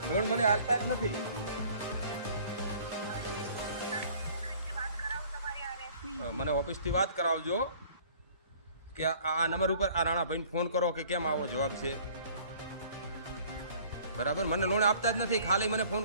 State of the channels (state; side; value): inverted; both; correlation -0.53